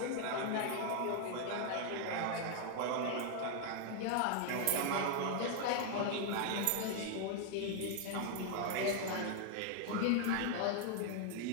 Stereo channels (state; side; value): different; both; correlation 0.00